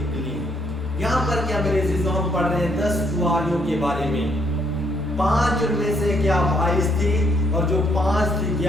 यहाँ पर क्या मेरे अजीजों हम पढ़ रहे हैं 10 कुंवारियों के बारे में। 5 उनमें से क्या वाइस थी, और जो 5 थी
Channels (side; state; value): both; normal; correlation 0.70